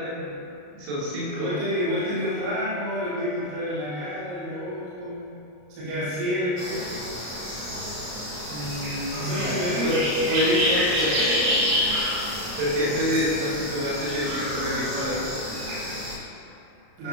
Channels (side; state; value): left; late; 34 ms